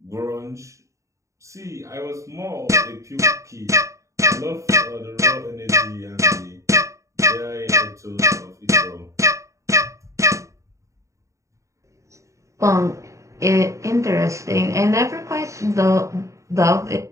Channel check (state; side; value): late; left; 0.15 ms